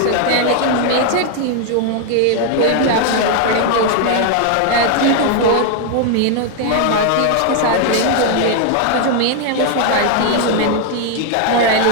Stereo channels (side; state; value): both; different; correlation 0.00